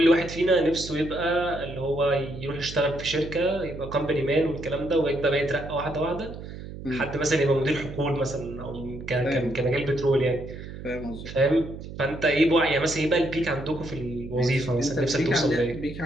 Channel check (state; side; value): noise; right; hum, 11 dB below the sound